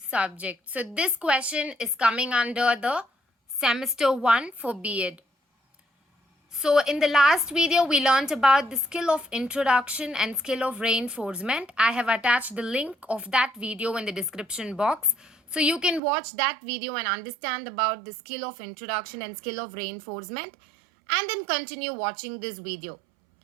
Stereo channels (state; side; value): drops out; left; at 16.0 s